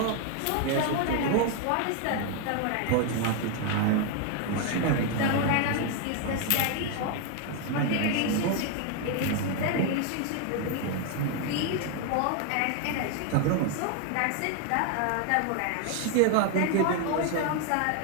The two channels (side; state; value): both; different; correlation 0.01